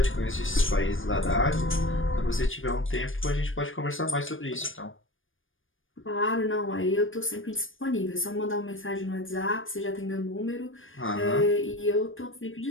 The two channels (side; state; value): right; late; 0.58 ms